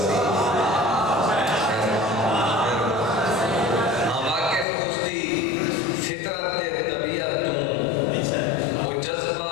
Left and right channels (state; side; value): drops out; right; at 4.7 s